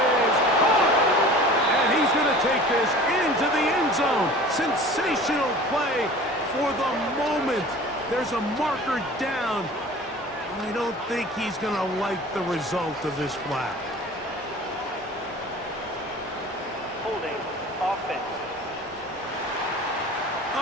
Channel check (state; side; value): normal; both; correlation 0.42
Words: is caught. And he's going to take this into the end zone. Sensational play for the moment. There's a marker down. I don't think he's going to like the result of this flag. Holding. Offense.